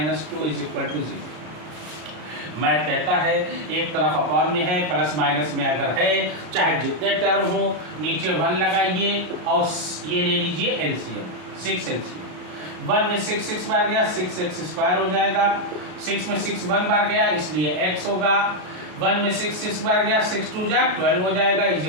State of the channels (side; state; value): left; late; 33 ms